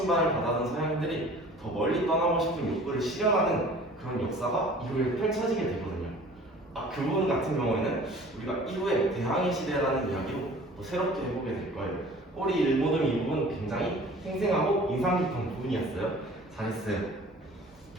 받아든 서양인들이 더 멀리 떠나고 싶은 욕구를 실현하는 그런 역사가 이후에 펼쳐지게 되거든요. 그 부분 같은 경우에는 우리가 이후에 대항해 시대라는 이야기로 또 새롭게 해보게 될 거예요. 우리 일모듬 이 부분 굉장히 생생하고 인상 깊은 부분이었어요. 잘했어요.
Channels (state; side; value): normal; both; correlation 0.47